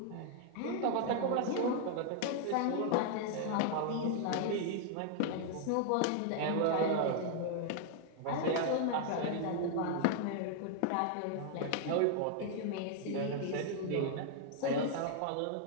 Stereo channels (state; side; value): different; both; correlation 0.00